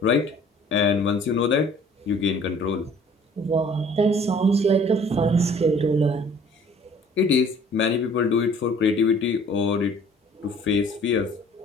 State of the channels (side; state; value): both; normal; correlation 0.53